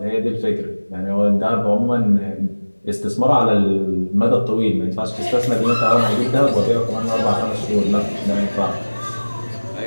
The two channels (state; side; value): inverted; both; correlation -1.00